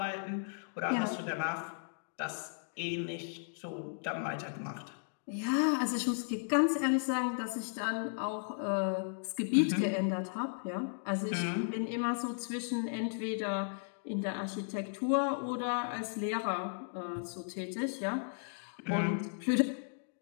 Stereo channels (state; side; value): silent; right; digital silence